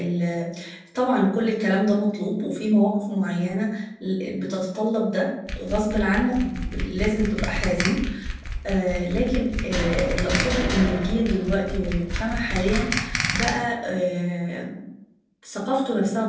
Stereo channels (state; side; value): identical; both; correlation 1.00